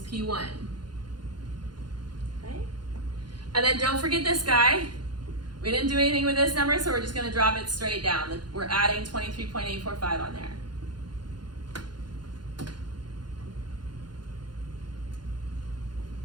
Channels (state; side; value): late; left; 0.71 ms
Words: P1. Okay? And then don't forget this guy. We didn't do anything with this number, so we're just going to drop it straight down. We're adding 23.845 on there.